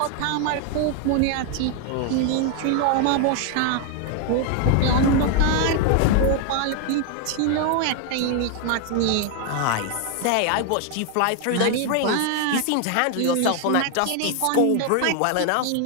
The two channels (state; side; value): different; both; correlation 0.01